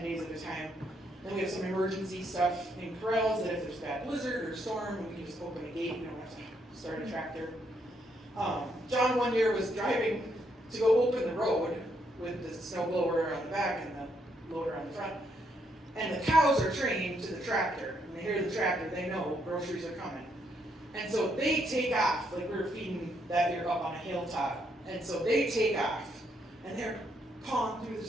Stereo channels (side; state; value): both; normal; correlation 0.75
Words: days at a time. Then we have some emergency stuff in corrals that if there's bad blizzard or storm, we can just open a gate. We don't have to start a tractor. John one year was driving to go open the road with the snow blower on the back and the loader on the front. And the cows are trained to the tractor. When they hear the tractor, they know groceries are coming. And so they take off, like we were feeding that year up on a hilltop. And so they take off, and they're pawing through the